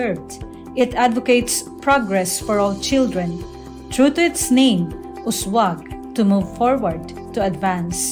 It advocates progress for all children. True to its name, Uswag, to move forward, to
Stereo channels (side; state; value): both; identical; correlation 1.00